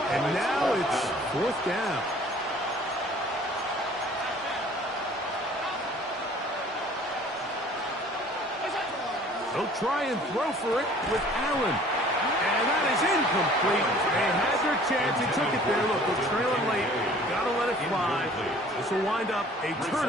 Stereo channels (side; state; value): both; normal; correlation 0.52